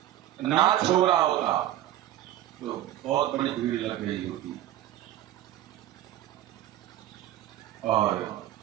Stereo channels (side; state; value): left; quieter; 13.4 dB